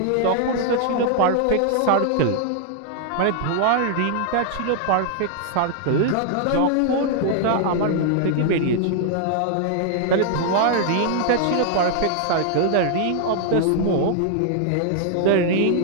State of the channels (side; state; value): both; different; correlation -0.01